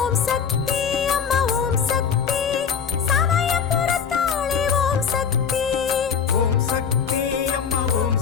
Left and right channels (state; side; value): quieter; right; 7.0 dB